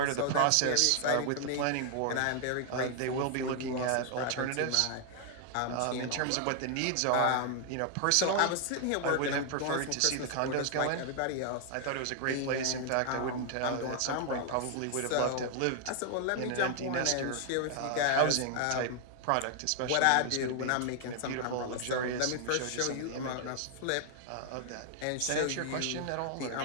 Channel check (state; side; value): different; both; correlation 0.00